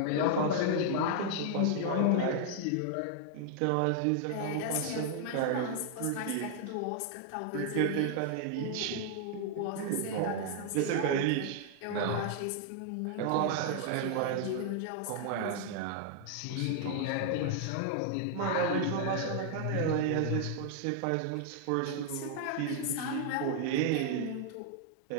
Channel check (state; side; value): different; both; correlation 0.00